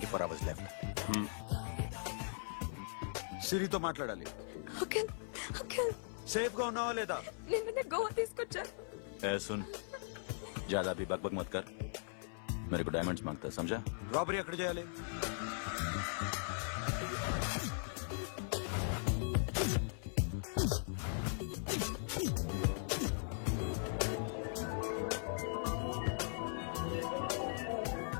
hours left. సిరితో మాట్లాడాలి. అంకిల్ అంకిల్ సేఫ్ గా ఉన్నావా లేదా? నిన్న గోవా తీసుకొచ్చారు. ए सुन, ज्यादा भी बकबक मत कर. मेरे को डायमंड्स मांगता है, समझा? రాబరీ ఎక్కడ చేయాలి?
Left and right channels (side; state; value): right; silent; 51 dB below the other